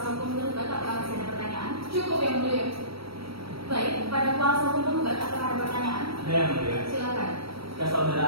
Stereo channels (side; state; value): left; late; 0.75 ms